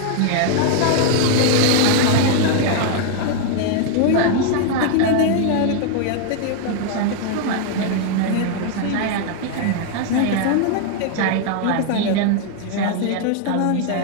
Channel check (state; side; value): different; both; correlation 0.00